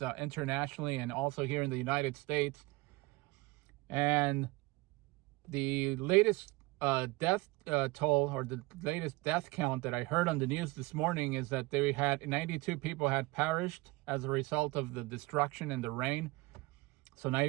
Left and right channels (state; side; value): quieter; left; 22.6 dB